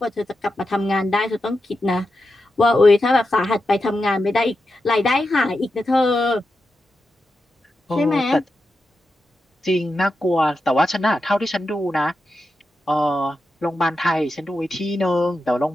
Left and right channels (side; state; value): both; normal; correlation 0.89